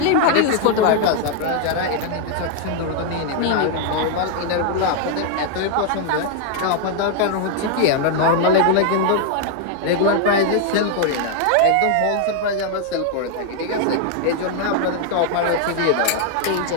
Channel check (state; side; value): different; both; correlation 0.00